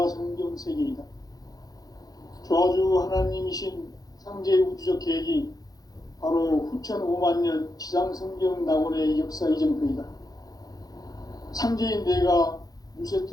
세계이다. 조화주 하나님이신 상제 우주적 계획이 바로 후천 5만 년 지상성경 낙원의 역사 이전표이다. 상제인 내가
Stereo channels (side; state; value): right; late; 0.18 ms